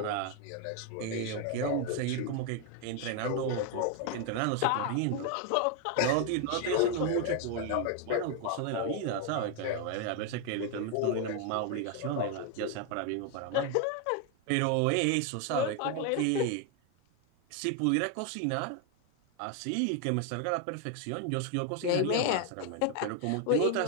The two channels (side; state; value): both; different; correlation 0.01